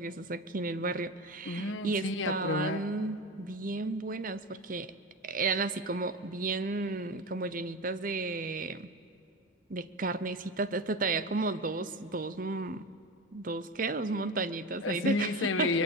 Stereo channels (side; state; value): both; normal; correlation 0.24